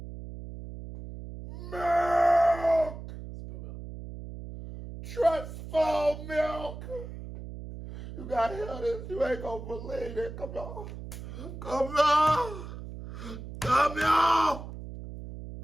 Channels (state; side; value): noise; right; hum, 11 dB below the sound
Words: Milk! Trustful milk! You gotta hear this. You ain't gonna believe it. Come on. Come on. Come on.